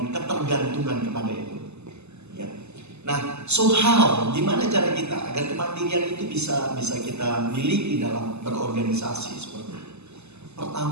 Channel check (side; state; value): left; late; 0.81 ms